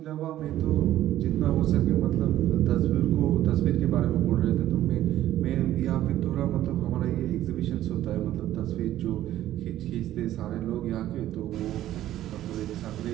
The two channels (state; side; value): quieter; left; 13.3 dB